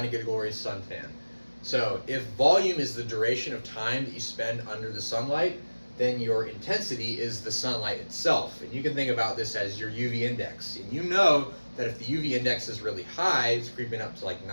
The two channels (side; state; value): both; inverted; correlation -1.00